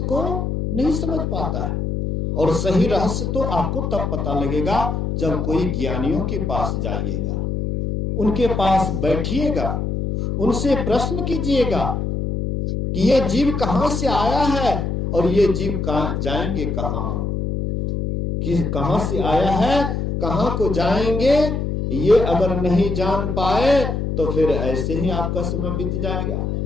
को नहीं समझ पाता है। और सही रहस्य तो आपको तब पता लगेगा जब कोई ज्ञानियों के पास जाइएगा, उनके पास बैठिएगा, उनसे प्रश्न कीजिएगा कि ये जीव कहां से आया है और ये जीव जाएंगे कहां, कि कहां से आया है, कहां को जाएंगे, ये अगर नहीं जान पाए तो फिर ऐसे ही आपका समय बीत जाएगा।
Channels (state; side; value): noise; left; hum, 2 dB below the sound